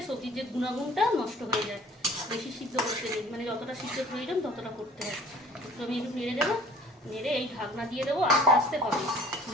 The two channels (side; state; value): both; normal; correlation 0.49